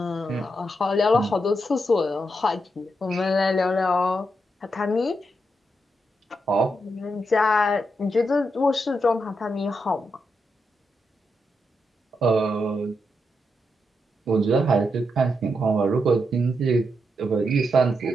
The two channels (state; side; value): normal; both; correlation 0.83